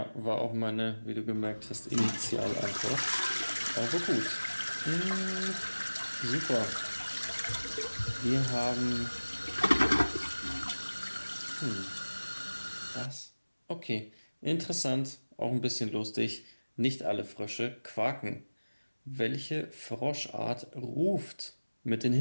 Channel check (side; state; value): both; inverted; correlation -1.00